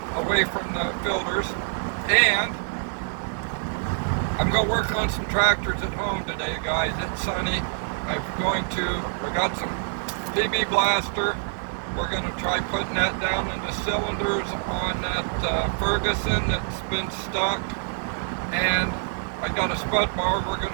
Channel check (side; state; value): left; silent; digital silence